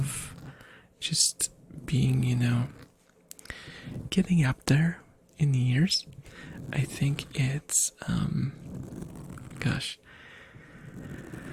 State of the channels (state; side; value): identical; both; correlation 1.00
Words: just being, getting up there in years. I think it's